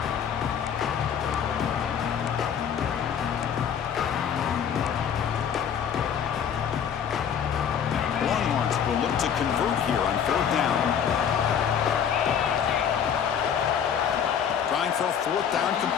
Will look to convert here on 4th down. Trying for a 4th down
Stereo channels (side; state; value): right; quieter; 8.1 dB